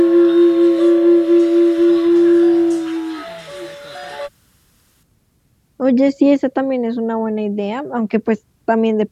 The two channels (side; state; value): both; identical; correlation 1.00